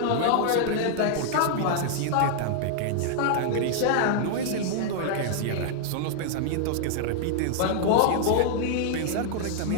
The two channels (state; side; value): different; both; correlation -0.01